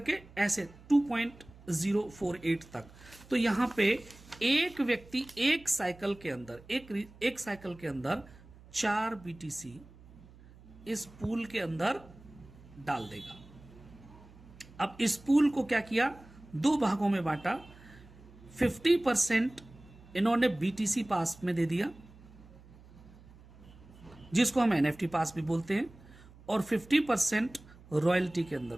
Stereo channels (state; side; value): noise; right; hum, 22 dB below the sound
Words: ऐसे 2.048 तक। तो यहां पे एक व्यक्ति एक साइकिल के अंदर, एक साइकिल के अंदर 4 BTC इस पूल के अंदर डाल देगा। अब इस पूल को क्या किया, 2 भागों में बांटा। 50% इन्होंने BTC पास में दे दिया, जिसको हम NFT पास भी बोलते हैं, और 50% रॉयल्टी के अंदर